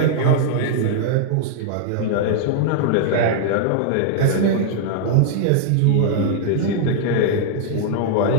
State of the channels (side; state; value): both; different; correlation -0.01